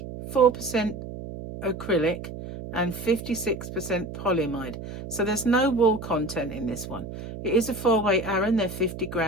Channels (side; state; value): right; noise; hum, 10 dB below the sound